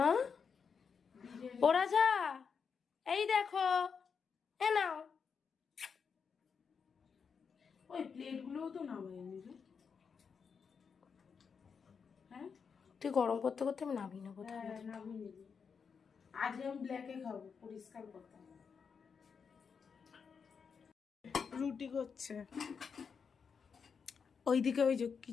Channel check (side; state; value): right; quieter; 6.1 dB